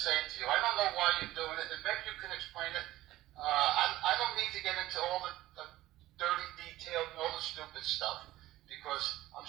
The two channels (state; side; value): quieter; left; 16.0 dB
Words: to you. I don't know why you're doing it, and maybe you can explain it. I don't need to get into all the dirty details and all the stupid stuff, because